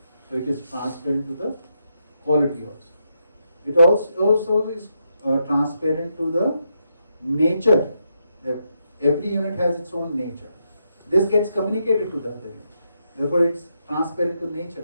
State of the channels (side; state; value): both; inverted; correlation -0.81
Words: So it is transparent to the quality also. It also is transparent to the nature. Every unit has its own nature. This gets communicated to the other unit. Therefore, it's transparent to nature